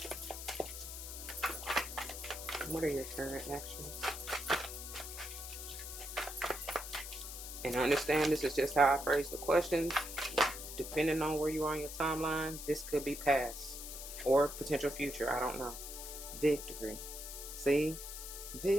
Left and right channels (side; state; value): left; noise; hiss, 9 dB below the sound